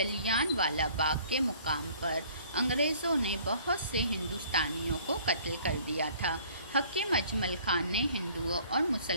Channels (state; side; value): inverted; both; correlation -0.55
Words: والا باغ کے مقام پر انگریزوں نے بہت سے ہندوستانیوں کو قتل کر دیا تھا. حکیم اجمل خان نے ہندوؤں اور